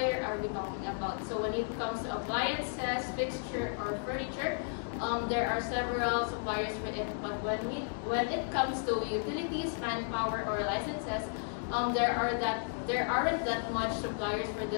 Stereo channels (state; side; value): silent; right; digital silence